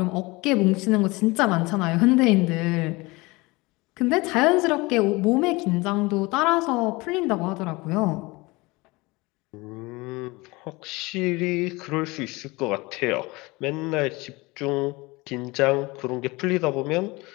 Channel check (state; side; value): quieter; right; 23.4 dB